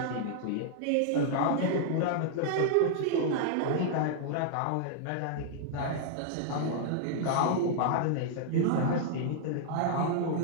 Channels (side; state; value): both; different; correlation -0.01